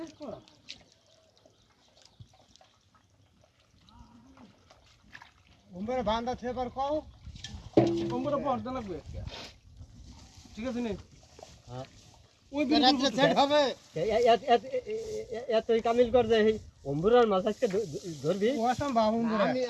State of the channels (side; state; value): both; identical; correlation 1.00